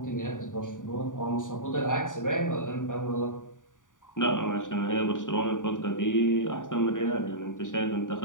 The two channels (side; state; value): right; late; 0.88 ms